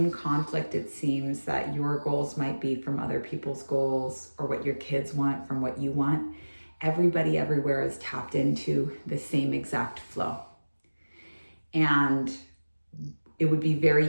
conflict it seems that your goals might be from other people's goals, or what your kids want from what you want, everybody everywhere is tapped into the same exact flow. And it would be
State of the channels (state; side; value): inverted; both; correlation -1.00